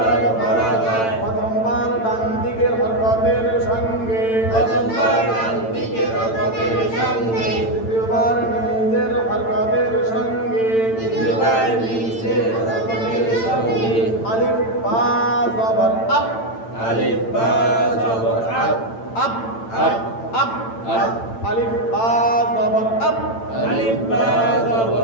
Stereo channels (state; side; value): late; right; 8.9 ms